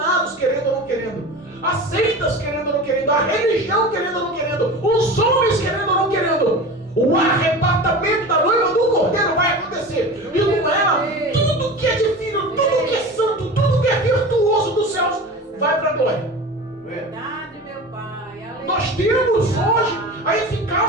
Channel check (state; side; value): normal; both; correlation 0.32